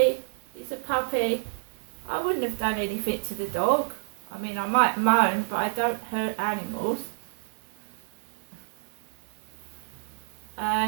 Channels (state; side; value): silent; left; digital silence